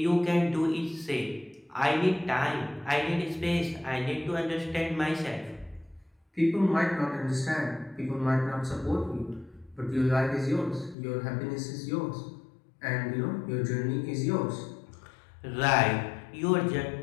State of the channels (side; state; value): right; drops out; at 11.0 s